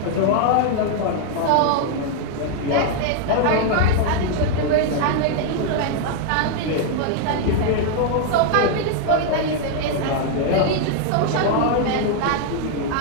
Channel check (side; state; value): both; different; correlation 0.00